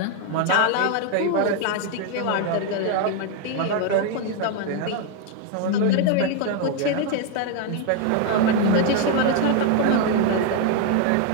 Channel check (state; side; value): different; both; correlation 0.01